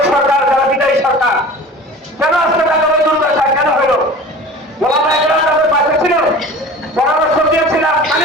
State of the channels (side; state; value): both; normal; correlation 0.39